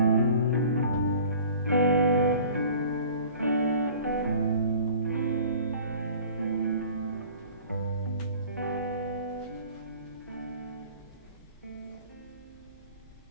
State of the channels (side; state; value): both; inverted; correlation -0.46